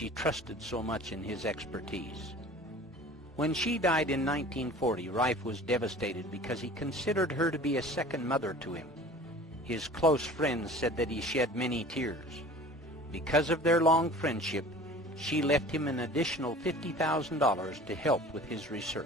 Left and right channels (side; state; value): both; normal; correlation 0.43